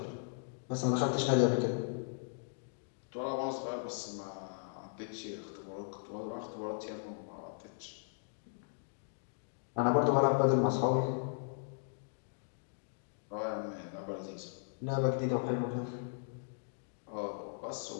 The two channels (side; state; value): right; silent; digital silence